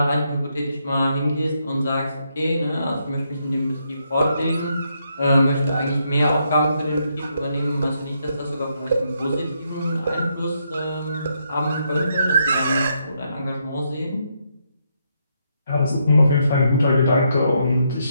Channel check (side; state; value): both; inverted; correlation -0.77